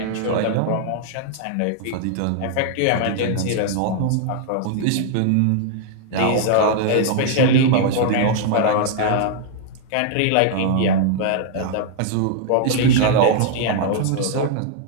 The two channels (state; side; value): different; both; correlation -0.01